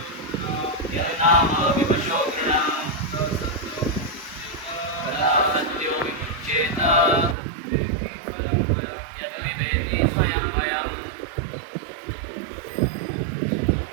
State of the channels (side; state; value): left; drops out; at 7.4 s